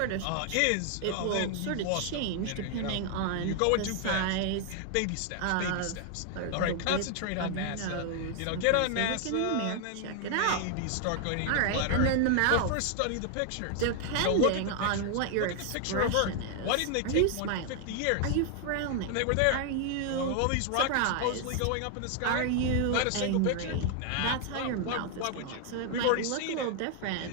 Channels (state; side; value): different; both; correlation 0.00